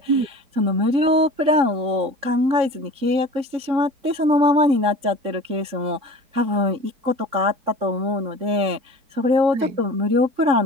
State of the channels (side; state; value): left; late; 3.7 ms